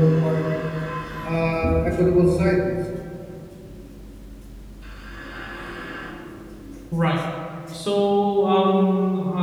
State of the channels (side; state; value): both; identical; correlation 1.00